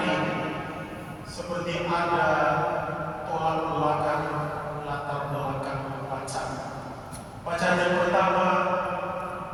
ini, seperti ada tolak belakang, latar belakang bacaan. Bacaan yang pertama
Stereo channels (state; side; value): identical; both; correlation 1.00